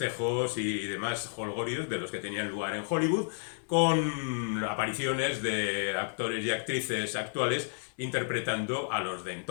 y demás jolgorios de los que tenían lugar en Hollywood, con apariciones de actores y actrices actuales interpretando a los de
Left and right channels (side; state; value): right; silent; 56 dB below the other